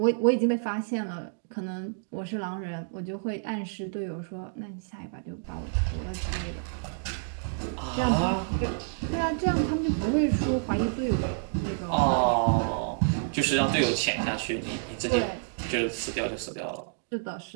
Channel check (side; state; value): left; silent; digital silence